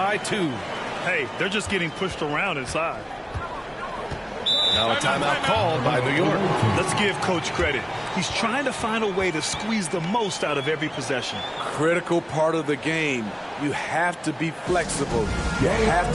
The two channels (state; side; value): identical; both; correlation 1.00